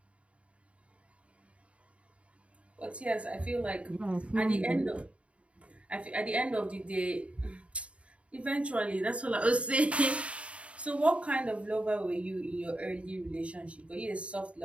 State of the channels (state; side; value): late; left; 0.062 ms